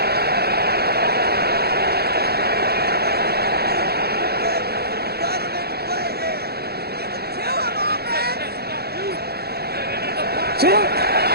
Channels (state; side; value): late; left; 0.46 ms